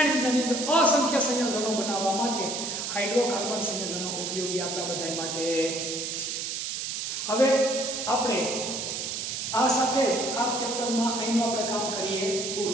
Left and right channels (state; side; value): noise; right; hiss, 3 dB below the sound